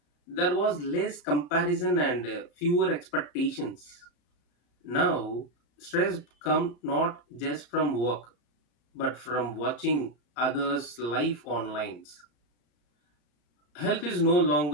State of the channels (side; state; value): right; late; 34 ms